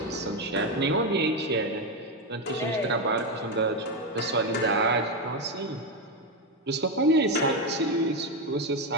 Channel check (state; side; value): normal; both; correlation 0.09